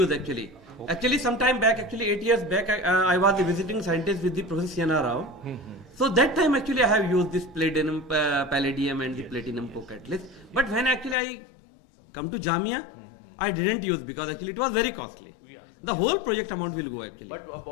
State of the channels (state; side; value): drops out; right; at 11.2 s